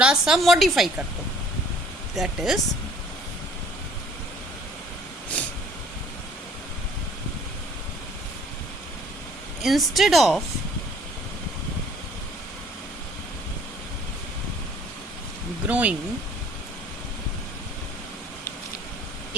सा मॉडिफाई कर दो, that is instead of growing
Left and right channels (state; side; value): normal; both; correlation 0.56